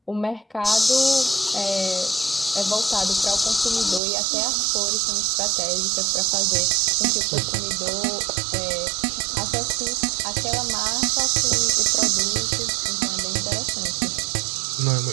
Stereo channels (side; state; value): left; drops out; at 4.0 s